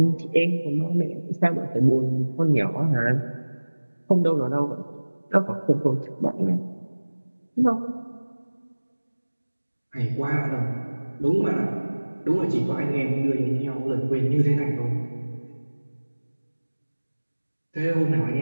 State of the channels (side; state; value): both; inverted; correlation -1.00